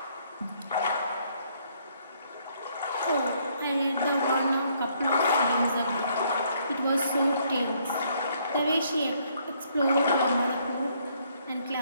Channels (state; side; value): inverted; both; correlation -0.67